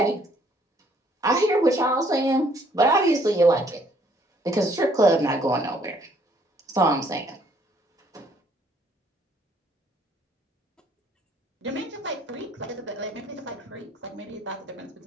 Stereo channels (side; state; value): both; normal; correlation 0.64